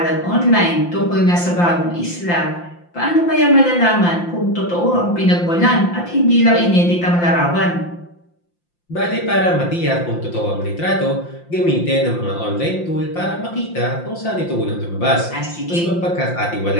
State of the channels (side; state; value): right; late; 5.8 ms